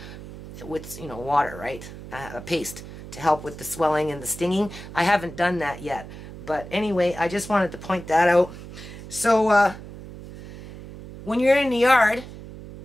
with, you know, water, right? A paste to help with the swelling and the stinging. I haven't done that yet. But anyway, I just wanted to point that out. So, when you're in the yard,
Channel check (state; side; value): noise; right; hum, 14 dB below the sound